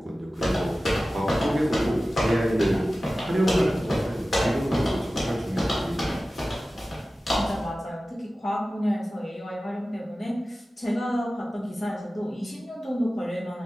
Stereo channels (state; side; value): normal; both; correlation 0.96